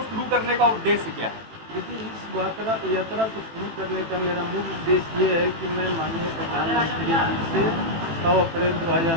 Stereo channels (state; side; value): late; left; 18 ms